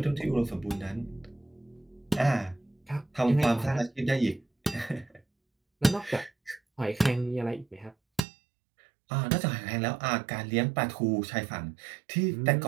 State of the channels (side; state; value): left; drops out; at 8.2 s